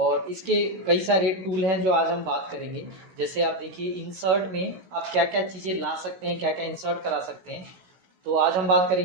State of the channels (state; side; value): late; left; 16 ms